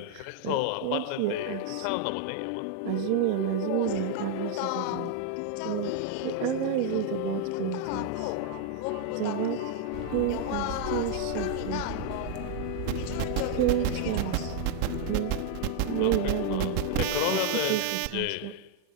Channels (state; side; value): different; both; correlation 0.00